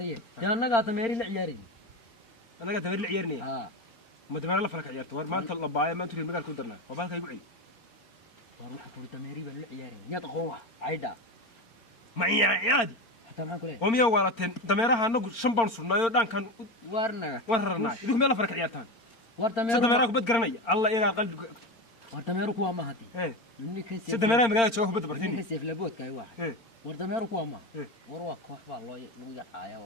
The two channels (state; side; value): late; right; 4.4 ms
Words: يا انا قاطه ميري العياري انا قاعد امير العيارني ها ما دمر لا فلك عيارته ور ما انت لبايه ما انت المقال ku darna وبالك يقعي واروح اقول تميري بالعياري يا تقوى عيدا معي عادي حتى معك ليه وميا والتين دميرها anagu 5 baan sunnaayo dhankan warnaga wararnaa idinku meel farka ciyaartaan wartameeru saddemeeraha kubad garanaya alla ila qalbiga wartameeru kuwa ma hadi yuni kan saddemeeraha magaalada jooga kubad bartini kan seef laboodka ay waxa wartameeru kuwa ma war waa koox baa loo lagu yacaaya